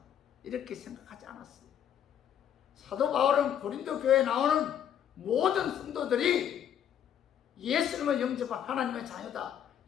이렇게 생각하지 않았어요. 사도 바울은 고린도 교회에 나오는 모든 성도들이 예수님을 영접한 하나님의 자녀다,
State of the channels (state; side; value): quieter; right; 9.6 dB